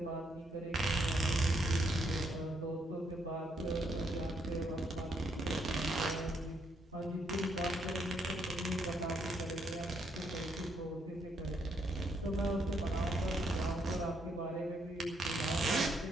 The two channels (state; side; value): normal; both; correlation 0.74